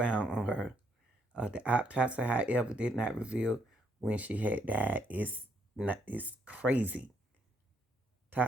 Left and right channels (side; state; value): both; normal; correlation 0.72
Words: on her. The autopsy, however, did not reveal when she had died. It's crazy.